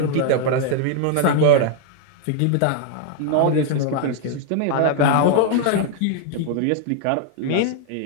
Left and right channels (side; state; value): both; different; correlation 0.00